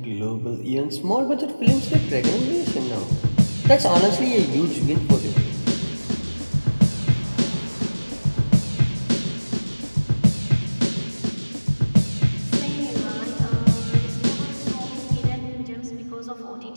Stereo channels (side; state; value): both; inverted; correlation -1.00